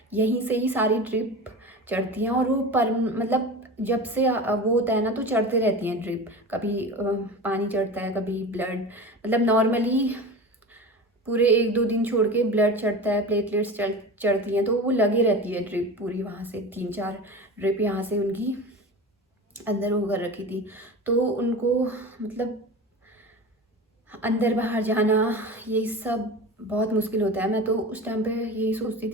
यहीं से ही सारी ड्रिप चढ़ती हैं, और वो पर मतलब जब से वो होता है ना तो चढ़ते रहती हैं ड्रिप, कभी पानी चढ़ता है, कभी ब्लड, मतलब नॉर्मली पूरे 1-2 दिन छोड़ के ब्लड चढ़ता है, प्लेटलेट्स चढ़ती हैं, तो वो लगी रहती है ड्रिप पूरी, वहाँ से 3-4 ड्रिप यहाँ से उनकी अंदर होकर रखी थी। तो उनको मतलब अंदर बाहर जाना ये सब बहुत मुश्किल होता है। मैं तो उस टाइम पे यही सोचती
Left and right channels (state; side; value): normal; both; correlation 0.31